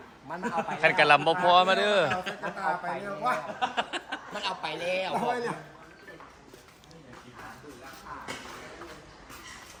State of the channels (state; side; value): identical; both; correlation 1.00